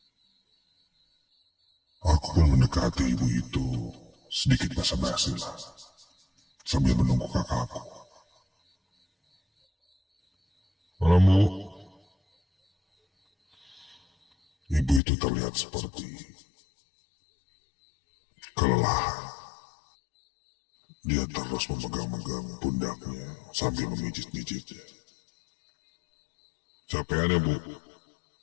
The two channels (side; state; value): right; drops out; at 15.0 s